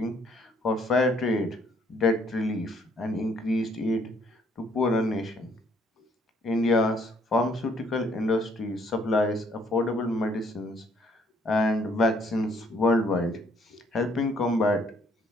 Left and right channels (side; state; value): both; normal; correlation 0.65